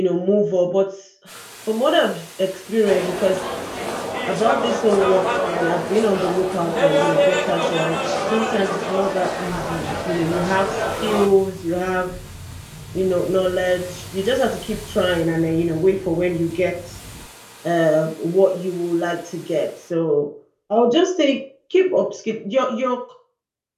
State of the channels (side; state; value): both; identical; correlation 1.00